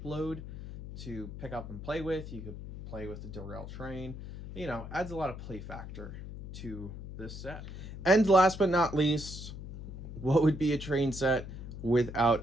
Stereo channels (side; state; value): left; noise; hum, 10 dB below the sound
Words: load to pick up and play with, you could play with the derailed train, you know, adds a lot of play factor to this set. And last but not least, what would be a train set without